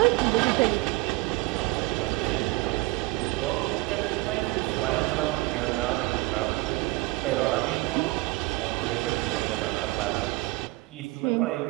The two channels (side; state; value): left; quieter; 22.0 dB